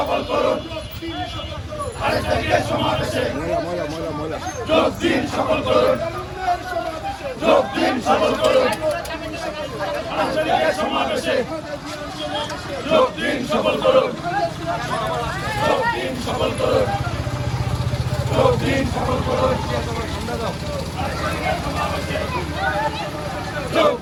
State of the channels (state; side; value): identical; both; correlation 1.00